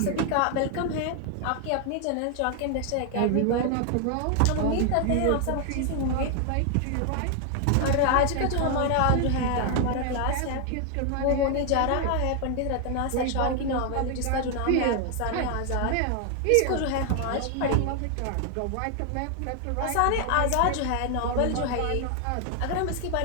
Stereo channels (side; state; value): both; different; correlation 0.00